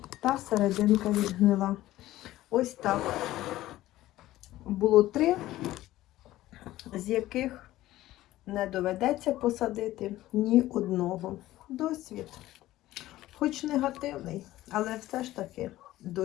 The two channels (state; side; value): quieter; right; 15.6 dB